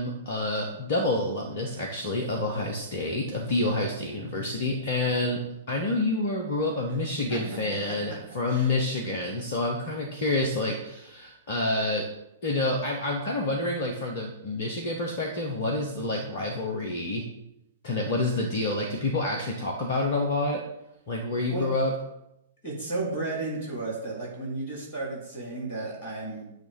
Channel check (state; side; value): inverted; both; correlation -0.30